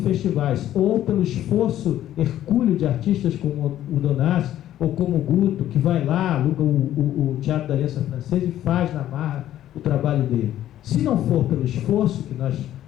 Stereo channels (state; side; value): quieter; right; 12.4 dB